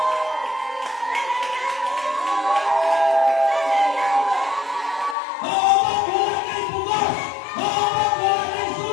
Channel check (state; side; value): drops out; right; at 5.2 s